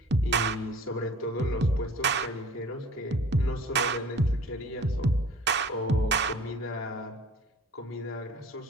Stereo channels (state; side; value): normal; both; correlation 0.47